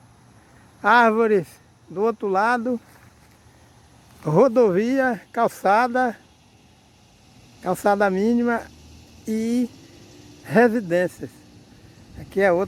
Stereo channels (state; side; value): identical; both; correlation 1.00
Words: árvores do outro lado, rodovia, calçada mínima e residências. Aqui é